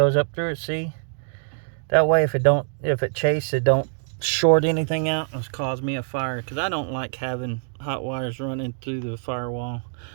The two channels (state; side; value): silent; left; digital silence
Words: up through it, see? That way if it chases, it don't short anything out and cause me a fire, because I don't like having hot wires running through the firewall.